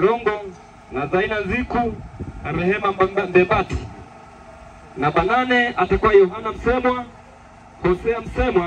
na Zaina Nziku na Rehema Mbebati. Namba 8 atakuwa Yohana Msemwa, Hosea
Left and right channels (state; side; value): identical; both; correlation 1.00